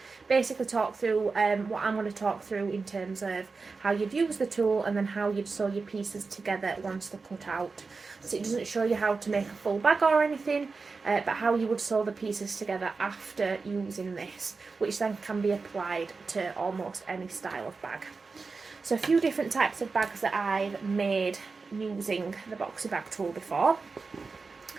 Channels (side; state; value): left; quieter; 4.3 dB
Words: basically talk through what I'm going to talk through in terms of how you'd use the tool and then how you'd sew your pieces together once they're cut out. So it doesn't show you how to make a full bag or anything, but how you would sew the pieces together after using this, which then can be applied to almost any style of bag. So a few different types of bags that I've made using the Boxy Bag Tool before.